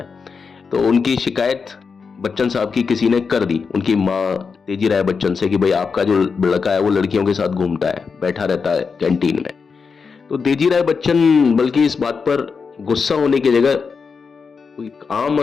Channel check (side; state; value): right; quieter; 5.4 dB